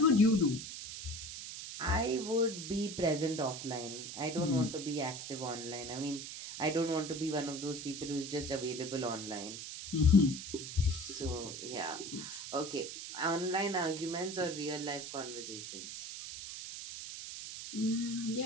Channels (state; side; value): noise; right; hiss, 8 dB below the sound